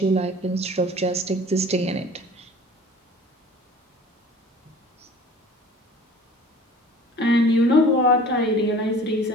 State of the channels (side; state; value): both; normal; correlation 0.46